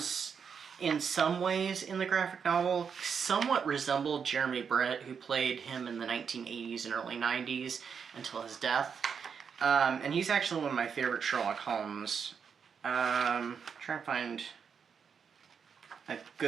in some ways in the graphic novel, somewhat resembled Jeremy Brett, who played him in the 1980s and early 90s until his death. And he's actually one of my favorite Sherlock Holmes. Trying to find a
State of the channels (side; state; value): left; quieter; 6.6 dB